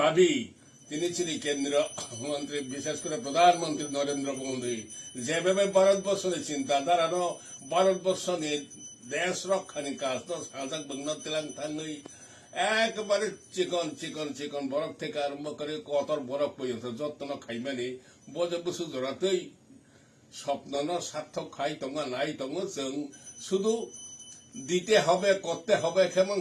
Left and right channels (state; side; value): identical; both; correlation 1.00